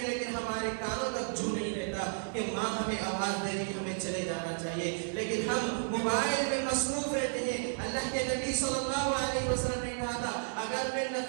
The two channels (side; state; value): left; silent; digital silence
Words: لیکن ہمارے کانوں تک چھو نہیں رہتا کہ ماں ہمیں آواز دے رہی ہمیں چلے جانا چاہیے لیکن ہم موبائل میں مصروف رہتے ہیں. اللہ کے نبی صلی اللہ علیہ وسلم نے کہا تھا اگر میں